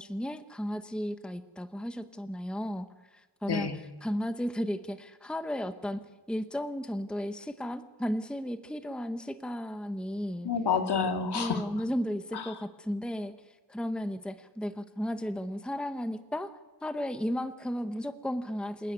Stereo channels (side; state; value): both; normal; correlation 0.74